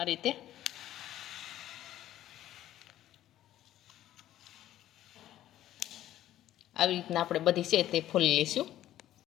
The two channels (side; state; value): right; quieter; 13.0 dB